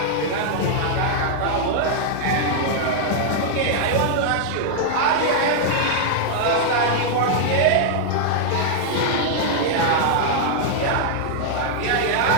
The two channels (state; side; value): different; both; correlation -0.01